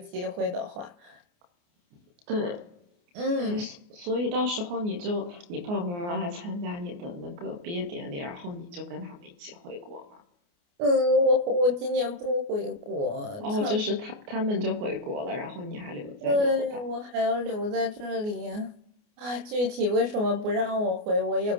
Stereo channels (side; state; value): left; late; 29 ms